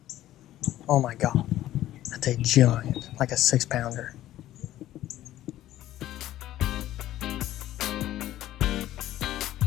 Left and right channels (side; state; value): right; quieter; 13.8 dB